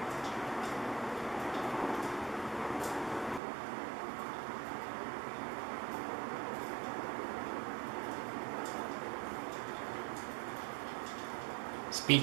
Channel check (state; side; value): drops out; left; at 3.4 s